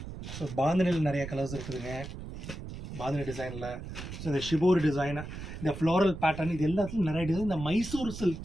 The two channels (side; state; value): right; noise; rumble, 10 dB below the sound